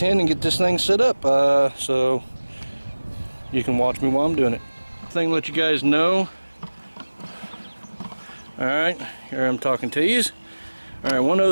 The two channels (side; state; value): both; inverted; correlation -1.00